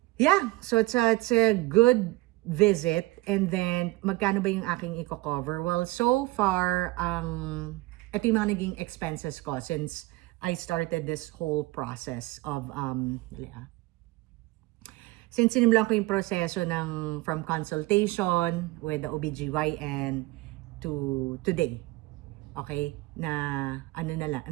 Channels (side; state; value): left; quieter; 20.8 dB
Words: yeah. So, it's a good visit. And then, magkano ba yung aking i-cover? Well, so far, ito yung mga naging expenses ko since I started this whole process of, since sinimulan ko yung proseso from consultation with the OBGYN to today. Okay? Na